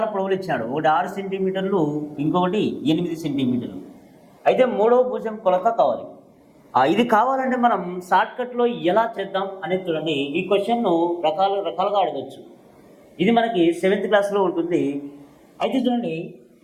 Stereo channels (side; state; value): both; identical; correlation 1.00